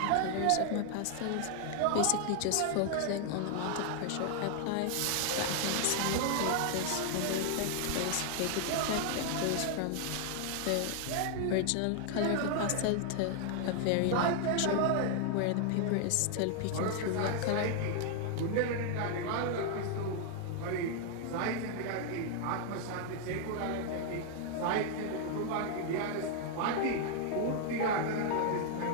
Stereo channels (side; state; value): both; different; correlation 0.00